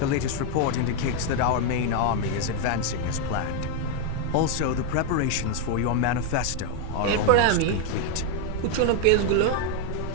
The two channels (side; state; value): both; different; correlation 0.01